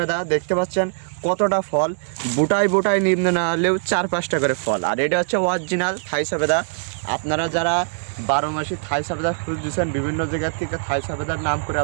দেখতে পাচ্ছেন কতটা ফল, বুটায় বুটায় নিম্ন না হলেও 4-5টা করে ফল। আর এটা হচ্ছে অরিজিনাল থাই সবেদা। আপনারা যারা 12 মাসি থাই সবেদা খুঁজছেন, বিভিন্ন জায়গার থেকে থাই সবেদার নাম করে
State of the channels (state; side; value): silent; left; 64 dB below the other